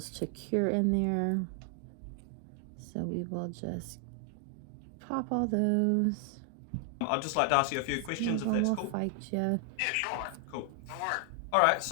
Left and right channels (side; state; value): both; different; correlation 0.00